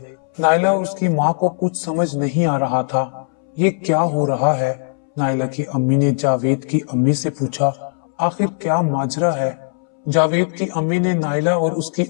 नायला और उसकी माँ को कुछ समझ नहीं आ रहा था। ये क्या हो रहा है? नायला की अम्मी ने जावेद की अम्मी से पूछा, आखिर क्या माजरा है? जावेद की अम्मी ने नायला और उसकी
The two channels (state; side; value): silent; right; 66 dB below the other